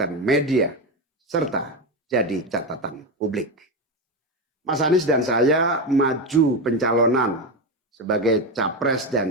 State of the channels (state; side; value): normal; both; correlation 0.14